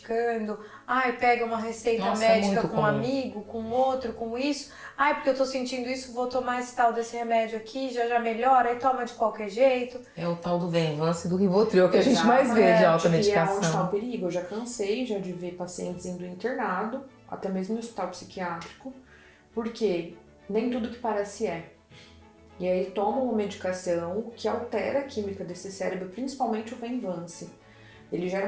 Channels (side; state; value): both; identical; correlation 1.00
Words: pega uma receita Nossa, é médica muito com um comum. amigo, com outro, com isso. Porque eu tô sentindo isso, vou tomar esse tal desse remédio aqui, já melhora, e toma de qualquer jeito. É o tal do Venvance e do Rivotril que a gente mais vê de E é onde está automedicação. o perigo. Eu já cansei de ver pacientes indo internado, até mesmo no hospital psiquiátrico, porque nem tudo que parece é. E aí tomam uma medicação que altera a química desse cérebro, principalmente o Venvance. Ele gera